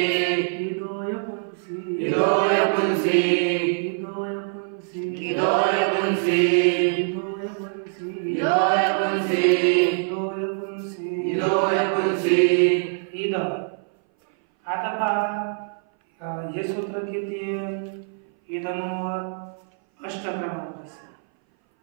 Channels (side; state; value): left; silent; 59 dB below the other